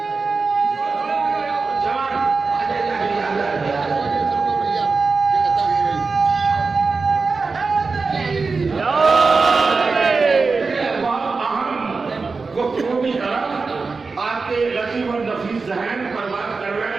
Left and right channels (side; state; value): left; quieter; 4.3 dB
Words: آپ کے لطیف اور نفیس ذہن پر